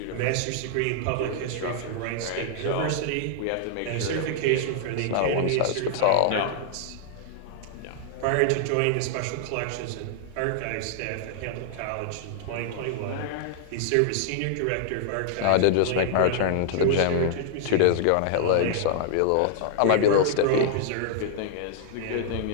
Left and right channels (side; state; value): both; different; correlation -0.01